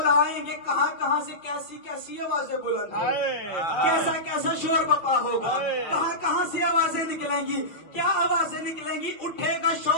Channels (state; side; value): late; right; 6.1 ms